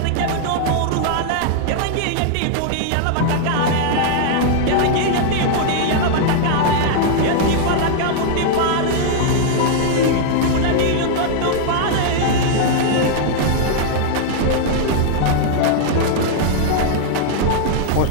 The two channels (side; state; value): both; different; correlation -0.01